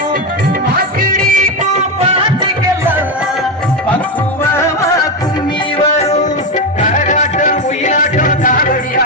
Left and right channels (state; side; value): normal; both; correlation 0.11